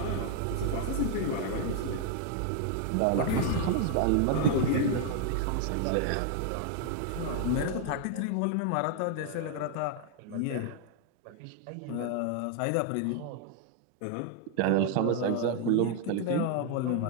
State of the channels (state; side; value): different; both; correlation 0.00